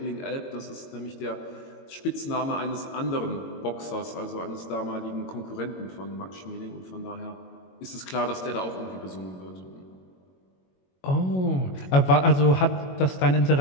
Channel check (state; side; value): late; right; 22 ms